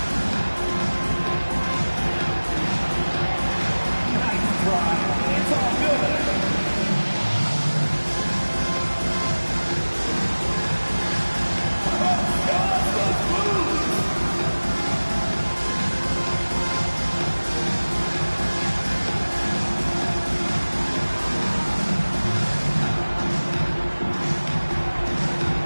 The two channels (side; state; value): both; inverted; correlation -1.00